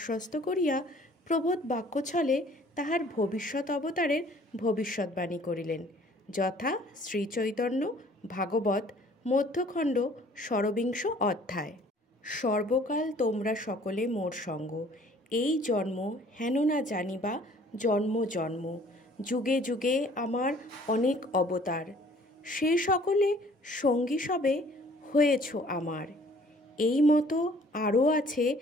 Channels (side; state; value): both; normal; correlation 0.55